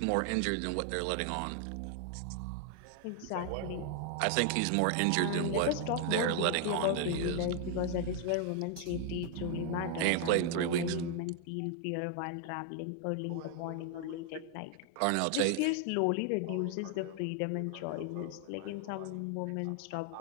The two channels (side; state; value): both; different; correlation 0.00